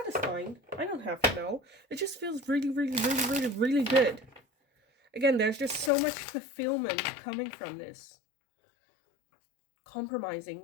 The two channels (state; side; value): drops out; right; at 5.9 s